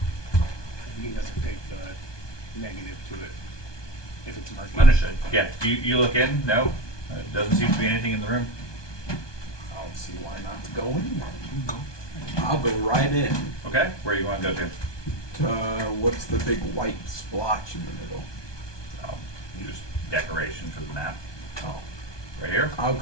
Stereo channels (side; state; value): right; late; 1.2 ms